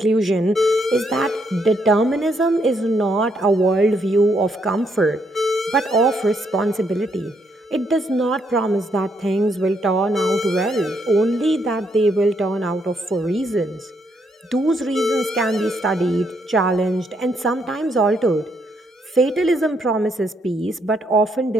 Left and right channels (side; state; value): both; normal; correlation 0.75